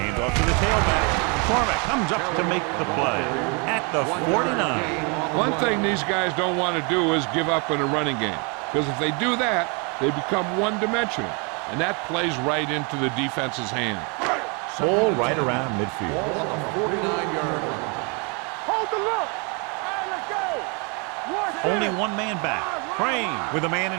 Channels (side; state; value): left; quieter; 33.4 dB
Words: off to the tailback. McCormick comes up to make the play at the 49. One thing these guys don't want to do is give up in a running game. Because if they do that, they become one-dimensional. And that plays right into the defense's hand. Ball right around midfield. Ball on the 49-yard line. Hold the look. All right, let's go. Only one man back. Crane with a man